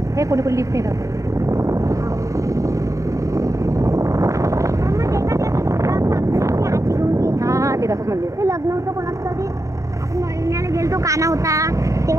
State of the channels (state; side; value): late; left; 0.15 ms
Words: हे कोणी कोणी लिफ्ट येतात. हां ते दाखव मंदिर. ते लग्न होतं कोणाचं तरी आपण महिन्याला गेलतो काना होता